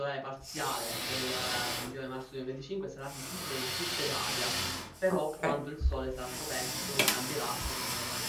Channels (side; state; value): both; identical; correlation 1.00